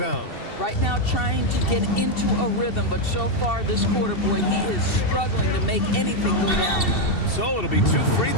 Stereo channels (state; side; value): late; right; 2.7 ms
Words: Right now trying to get into a rhythm, but so far this quarter, boy, he is struggling to make anything go down. So it'll be 2 free